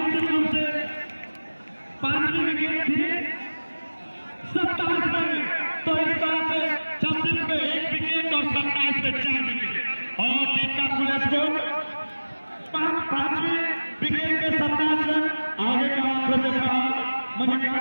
रूप से 5वीं विकेट थी 27 में, तो इस तरह से 26 पे 1 विकेट और 27 पे 4 विकेट और टीम का कुल स्कोर 5वीं विकेट पे 27 रन। आगे का आंकड़े देखा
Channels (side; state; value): both; inverted; correlation -1.00